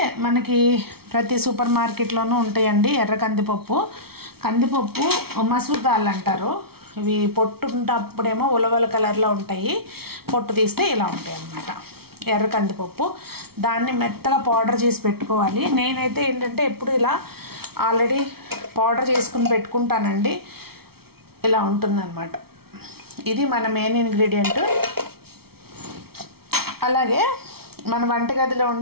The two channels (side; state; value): left; late; 0.95 ms